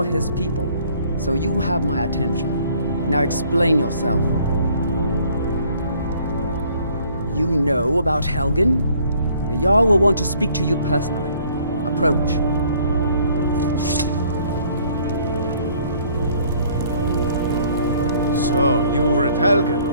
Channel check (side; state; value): both; inverted; correlation -0.59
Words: his people. So you have my attention. Now explain yourself. You know about Helgen? The Jarl will want to speak to you personally. Approach. So, you were at